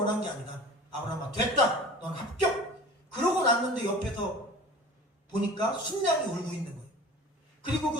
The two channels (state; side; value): normal; both; correlation 0.40